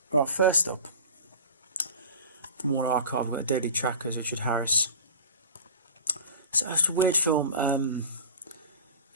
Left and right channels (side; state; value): both; inverted; correlation -0.36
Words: Right, first up from War Archive, we've got Deadly Trackers, Richard Harris. So it's a weird film.